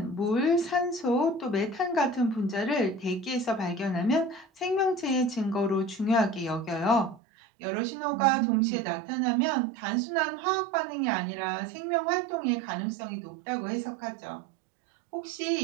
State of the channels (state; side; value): drops out; left; at 7.2 s